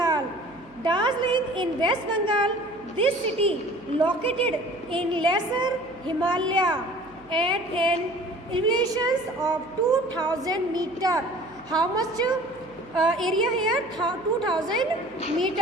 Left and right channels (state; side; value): noise; right; hum, 26 dB below the sound